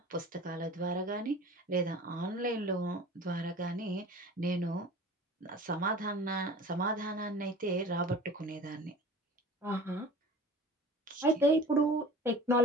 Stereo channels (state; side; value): normal; both; correlation 0.41